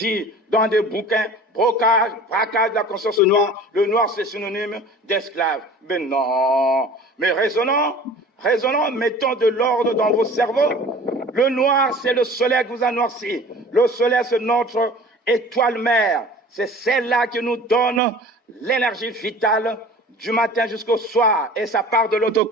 dans des bouquins, braquage de la conscience noire, le noir c'est synonyme d'esclave. Mais non. Mais raisonnons, mettons de l'ordre dans vos cerveaux. Le noir, c'est le soleil qui vous a noirci. Le soleil, c'est notre étoile mère. C'est celle-là qui nous donne l'énergie vitale du matin jusqu'au soir. Et ça part de l'autre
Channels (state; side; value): normal; both; correlation 0.43